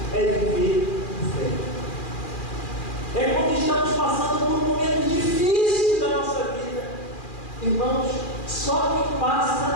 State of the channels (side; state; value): right; late; 2.4 ms